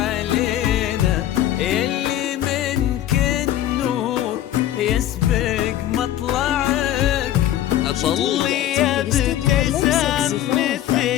يلي منك النور يسبق مطلعك. طلي يا ابتسام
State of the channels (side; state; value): right; quieter; 12.5 dB